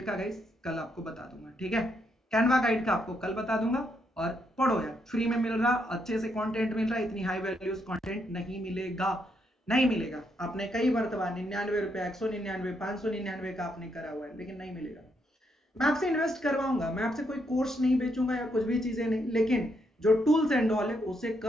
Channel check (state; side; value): normal; both; correlation 0.77